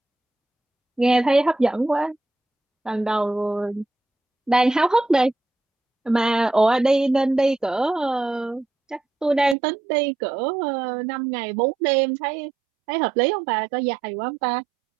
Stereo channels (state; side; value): drops out; left; at 9.6 s